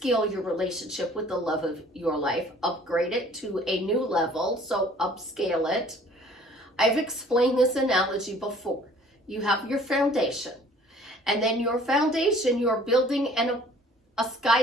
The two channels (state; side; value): normal; both; correlation 0.53